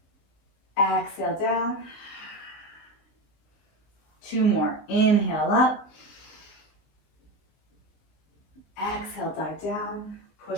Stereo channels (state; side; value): late; right; 19 ms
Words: Exhale down. 2 more. Inhale up. Exhale, dive down.